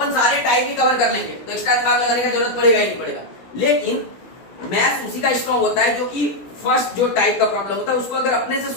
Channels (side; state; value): right; late; 16 ms